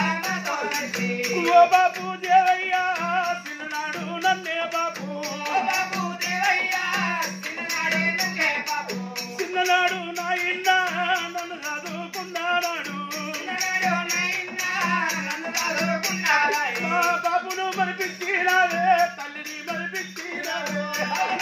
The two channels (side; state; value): both; identical; correlation 1.00